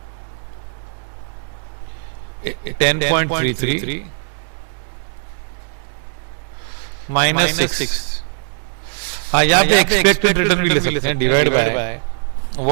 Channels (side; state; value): left; silent; digital silence